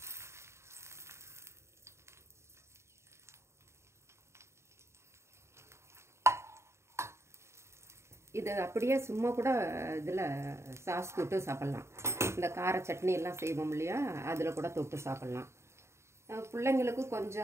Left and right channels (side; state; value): left; late; 0.13 ms